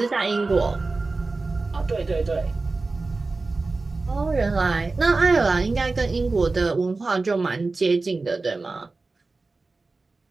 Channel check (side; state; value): left; quieter; 3.6 dB